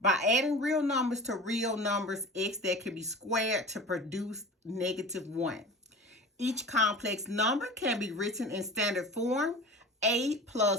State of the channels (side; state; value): both; normal; correlation 0.36